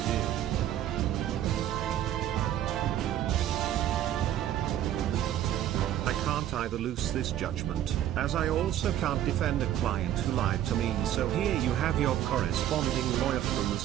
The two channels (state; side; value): quieter; left; 11.7 dB